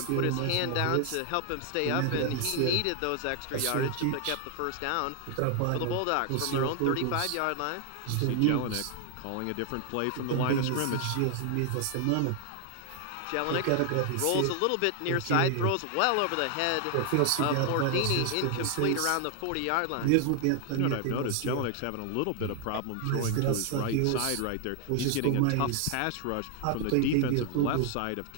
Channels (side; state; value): both; different; correlation 0.00